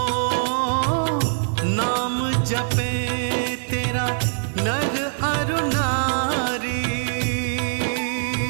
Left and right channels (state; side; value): silent; left; 61 dB below the other